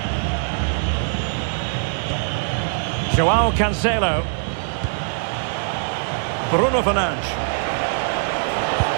Joao Cancelo. Bruno Fernandes.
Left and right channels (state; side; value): silent; left; digital silence